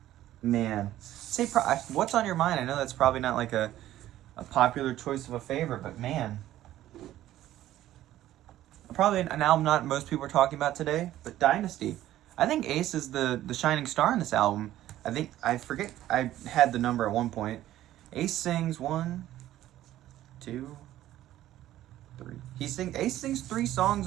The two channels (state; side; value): quieter; left; 13.7 dB